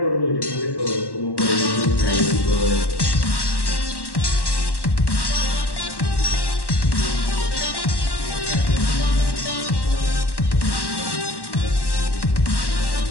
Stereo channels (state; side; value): late; right; 1.1 ms